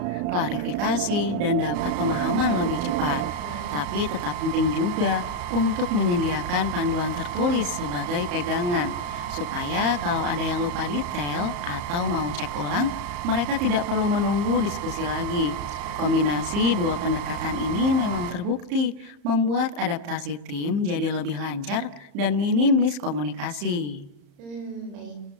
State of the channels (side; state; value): left; late; 34 ms